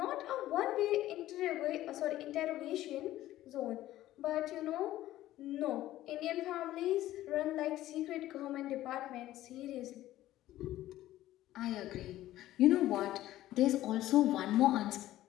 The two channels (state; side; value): quieter; right; 14.6 dB